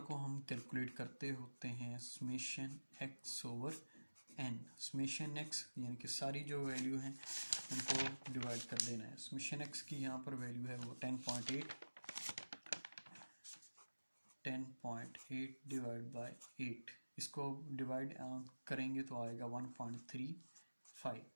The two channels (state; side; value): inverted; both; correlation -1.00